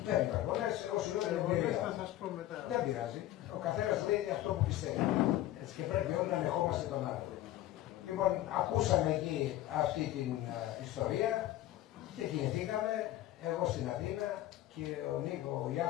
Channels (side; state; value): right; quieter; 14.2 dB